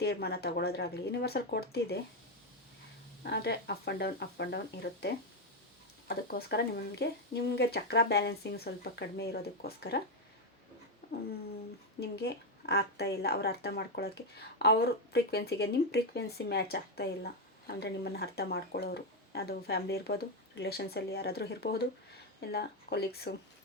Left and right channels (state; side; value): normal; both; correlation 0.05